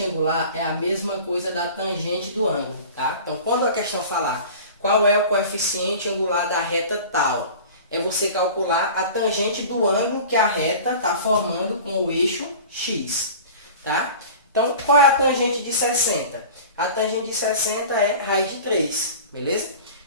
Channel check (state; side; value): inverted; both; correlation -0.39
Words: angular é a mesma coisa da tangente do ângulo, tá? Então, quando a questão falar qual é o coeficiente angular da reta tal, é você calcular a tangente do ângulo que a reta está formando com o eixo X, tá? Então, qual é a tangente de 60? A tangente de 60 é raiz de 3, beleza?